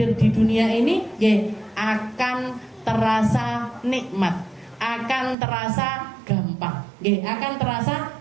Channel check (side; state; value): left; drops out; at 5.4 s